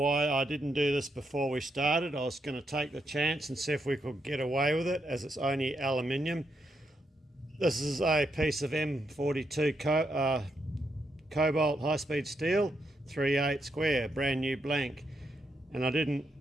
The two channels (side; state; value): both; normal; correlation 0.81